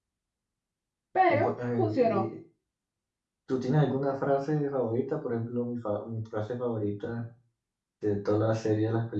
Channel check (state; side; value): identical; both; correlation 1.00